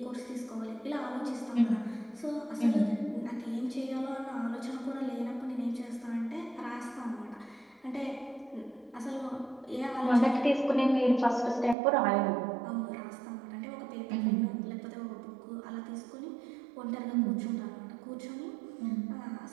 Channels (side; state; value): left; drops out; at 11.8 s